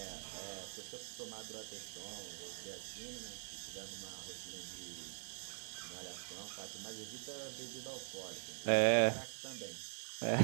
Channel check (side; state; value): left; silent; digital silence